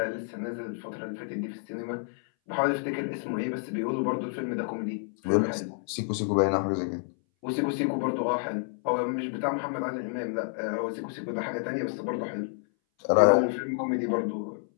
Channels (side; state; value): right; silent; 58 dB below the other